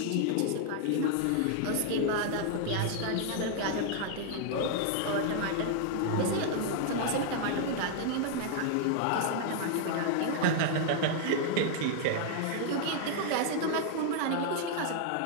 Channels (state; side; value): different; both; correlation 0.00